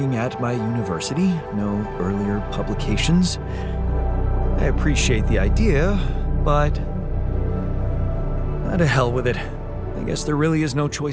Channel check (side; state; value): both; identical; correlation 1.00